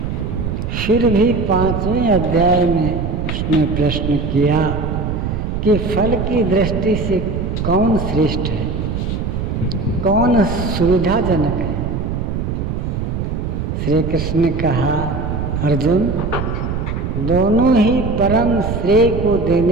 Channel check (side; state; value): right; noise; rumble, 2 dB below the sound